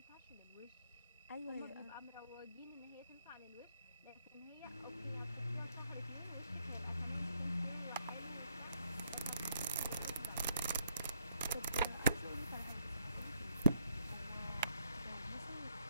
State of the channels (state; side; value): inverted; both; correlation -0.73